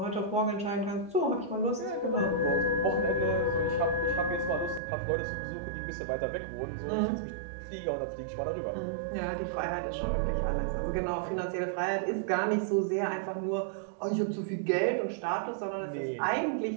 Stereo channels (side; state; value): left; drops out; at 4.8 s